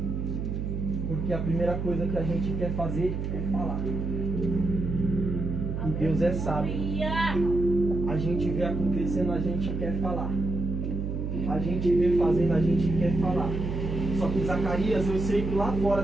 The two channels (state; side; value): noise; right; hum, 3 dB below the sound